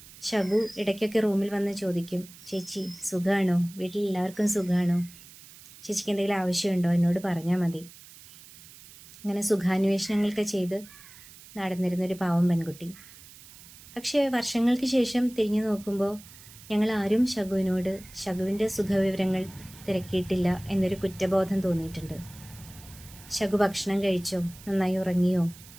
ശകു ഇടയ്ക്കൊക്കെ റൂമിൽ വന്ന് ചോദിക്കും, ചേച്ചി സുഖമാണോ? വീട്ടിൽ എല്ലാവർക്കും സുഖമാണോ? ചേച്ചിക്ക് എന്തെങ്കിലും ആവശ്യമുണ്ടോ? എന്നോട് പറഞ്ഞാൽ മതി. അങ്ങനെ സുഖാന്വേഷണങ്ങളൊക്കെ ചെയ്ത് നടന്നിരുന്നൊരു പാവം പെൺകുട്ടി. പക്ഷേ വർഷങ്ങൾക്ക് ശേഷം തിരിഞ്ഞു നോക്കുമ്പോൾ ഞങ്ങൾ ആരും ശകുവിനോട് ശകുവിൻ്റെ സുഖവിവരങ്ങൾ തിരക്കിയിട്ടില്ല എന്നൊരു കുറ്റബോധം തോന്നിയിട്ടുണ്ട്. ശകു ഭക്ഷണം കഴിച്ചോ? നന്നായി ഉറങ്ങിയോ?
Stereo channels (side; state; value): right; noise; hiss, 20 dB below the sound